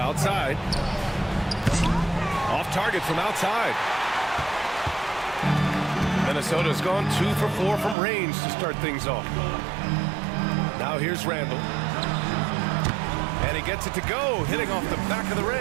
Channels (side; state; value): left; drops out; at 8.0 s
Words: Off target from outside. Minnesota's gone 2 for 4 from range to start things off. Now here's Randall. And he gets it to go, hitting off the back of the